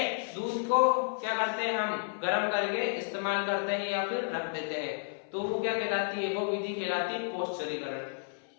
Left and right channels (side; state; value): right; silent; 56 dB below the other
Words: दूध को क्या करते हैं, हम गर्म करके इस्तेमाल करते हैं या फिर रख देते हैं, तो वो क्या कहलाती है, वो विधि कहलाती है पौष्टिकीकरण।